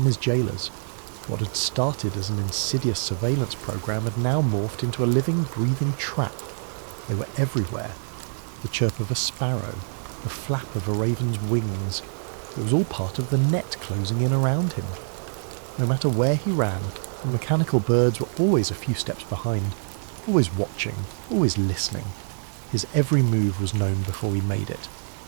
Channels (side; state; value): left; silent; digital silence